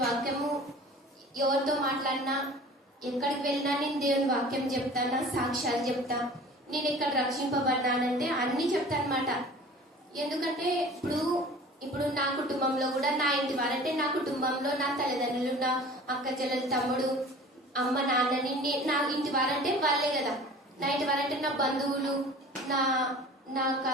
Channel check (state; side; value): normal; both; correlation 0.43